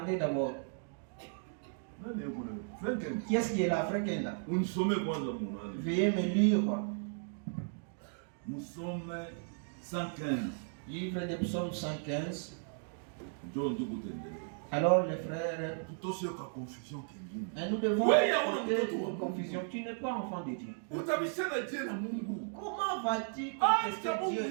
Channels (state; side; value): silent; left; digital silence